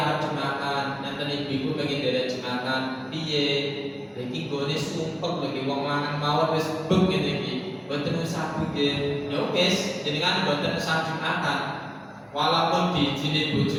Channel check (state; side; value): identical; both; correlation 1.00